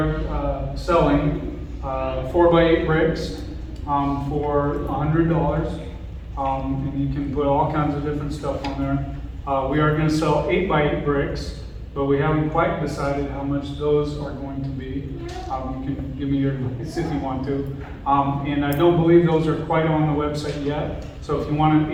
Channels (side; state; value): both; identical; correlation 1.00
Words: selling 4x8 bricks for $100, and you can put all kinds of different stuff on there. We are going to sell 8x8 bricks, but we haven't quite decided how much those are going to be. You can give me your advice if you want to. And I don't believe those are quite on the website yet. So if you want an